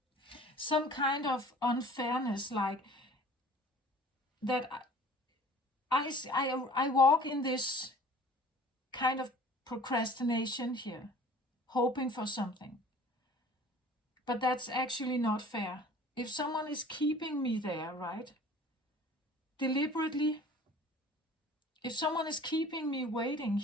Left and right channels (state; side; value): normal; both; correlation 0.47